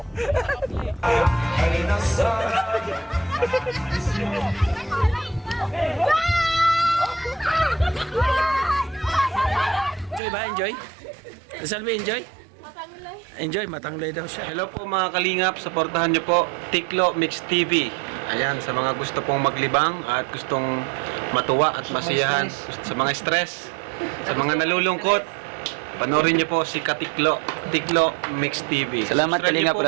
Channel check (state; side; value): drops out; left; at 10.2 s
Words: Enjoy ba? Enjoy? Salve, enjoy? Enjoy, matangloy daw siya. Hello po mga kalingap, supportahan nyo po Tiklo Mix TV. Ayan, sa mga gusto pong maglibang at gustong matuwa at masiyahan, sa mga stress, sa mga nalulungkot, panoorin nyo po si Katiklo, Tiklo Mix TV. Salamat Kalingap